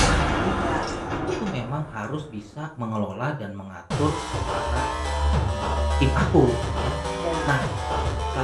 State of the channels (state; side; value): identical; both; correlation 1.00